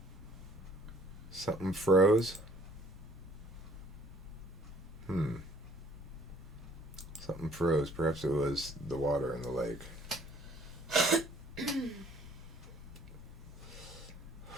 Something froze? Something froze. Perhaps it was the water in the lake.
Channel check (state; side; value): normal; both; correlation 0.59